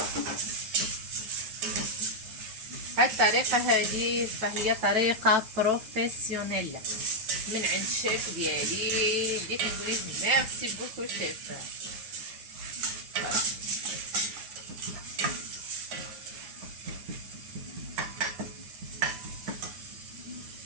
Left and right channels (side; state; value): left; late; 9.2 ms